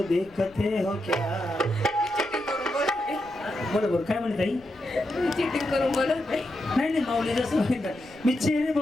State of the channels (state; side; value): noise; left; rumble, 26 dB below the sound